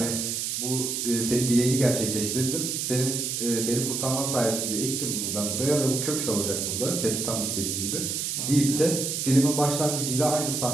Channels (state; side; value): noise; right; hiss, 2 dB below the sound